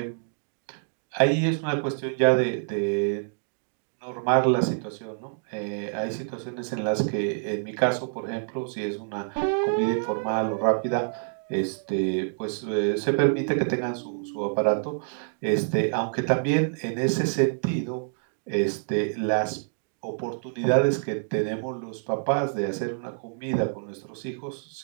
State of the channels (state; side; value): silent; left; digital silence